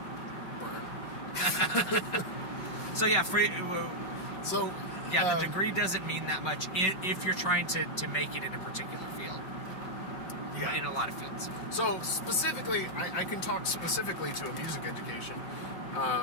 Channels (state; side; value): late; right; 5.3 ms